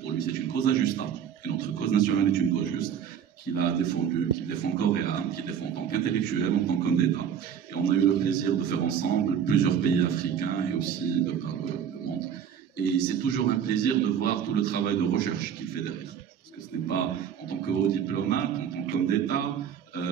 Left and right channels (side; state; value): left; quieter; 8.4 dB